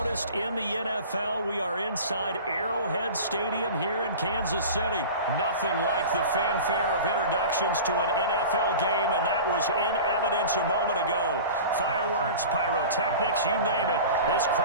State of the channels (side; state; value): both; inverted; correlation -0.36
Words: in the NFL, we are inside Arrowhead Stadium here in Kansas City. Nothing like the fanfare of introductions to an NFL game, and that was in evidence a moment ago. Fireworks, pyrotechnics, you name it. This